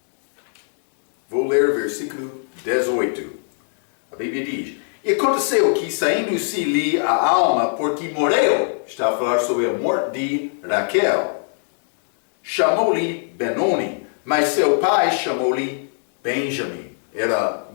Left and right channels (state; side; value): silent; right; digital silence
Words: Vou ler versículo 18. A Bíblia diz, e aconteceu que, saindo-se-lhe a alma, porque morreu, está a falar sobre a morte de Raquel, chamou-lhe Benoni, mas seu pai chamou-lhe Benjamim. Era